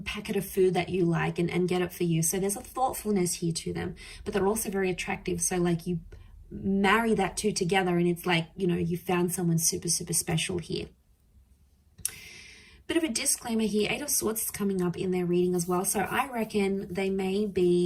packet of food that you like and get it for you. So there's a thoughtfulness here to them, but they're also very attractive. So like you marry that two together and it's like, you know, you found someone super, super special here. Bit of a disclaimer here, Eight of Swords is coming up in their reading as well. So I reckon they may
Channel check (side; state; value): both; identical; correlation 1.00